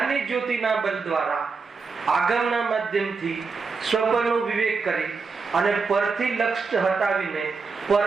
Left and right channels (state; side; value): quieter; left; 4.7 dB